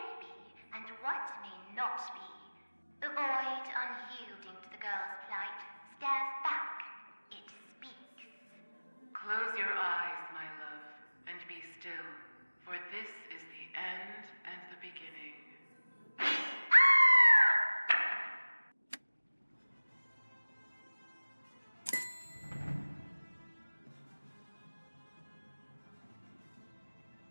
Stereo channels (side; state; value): both; inverted; correlation -1.00